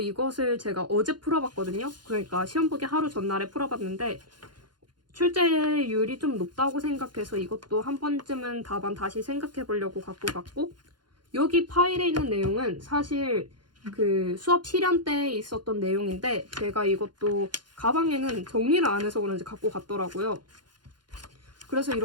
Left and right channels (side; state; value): left; late; 0.71 ms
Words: 제가 어제 풀어봤거든요. 그러니까 시험 보기 하루 전날에 풀어봤는데 출제율이 좀 높다고 생각해서 이것도 한 번쯤은 답안 다시 생각해 보려고 갖고 갔고, 여기 파일에 있는 내용은 사실 그 수업 실현 때 있었던 내용인데 제가 이것도 가방에는 정리를 안 해서 그런지 갖고 갔더라고요. 그래서